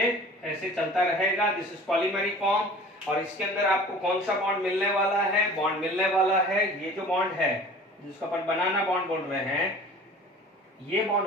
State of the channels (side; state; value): both; normal; correlation 0.43